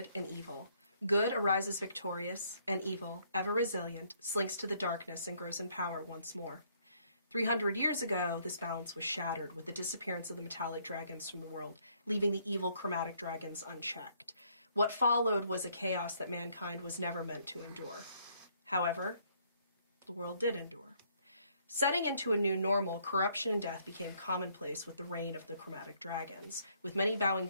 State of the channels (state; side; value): inverted; both; correlation -0.67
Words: and evil. Good arises victorious, and evil, ever resilient, slinks to the darkness and grows in power once more. 300 years ago, this balance was shattered with the disappearance of the metallic dragons from the world, leaving the evil chromatic dragons unchecked. What followed was a chaos that mankind was never meant to endure. However, the world did endure. Setting into a new normal, corruption and death became commonplace with the reign of the chromatic dragons, with many bowing